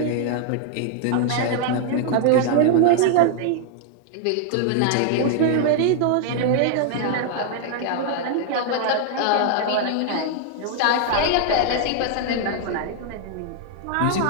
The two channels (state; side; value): different; both; correlation 0.00